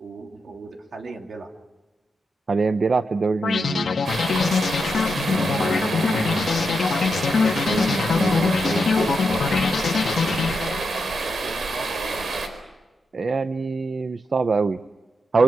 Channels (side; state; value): both; normal; correlation 0.85